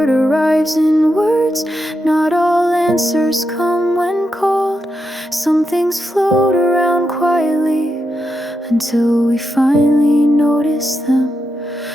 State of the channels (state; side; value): normal; both; correlation 0.85